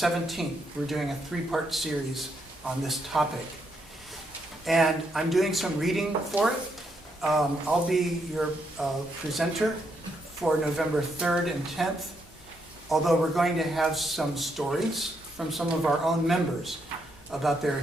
we're doing a three-part series on this topic. And I'm doing some reading for it. I'll be your presenter for November 3rd and 10th, although we're going to have some stories from some of our own members about their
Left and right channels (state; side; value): normal; both; correlation 0.78